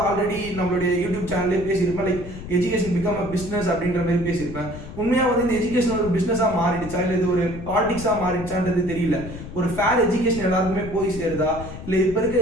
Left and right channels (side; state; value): left; noise; rumble, 11 dB below the sound